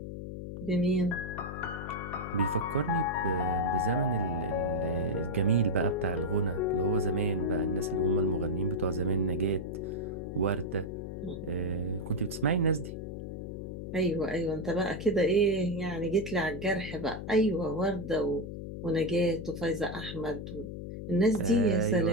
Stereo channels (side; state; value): left; noise; hum, 8 dB below the sound